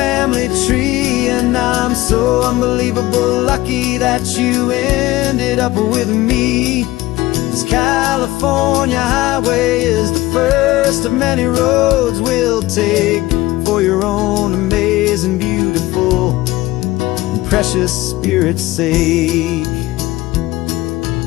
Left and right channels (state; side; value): quieter; right; 17.7 dB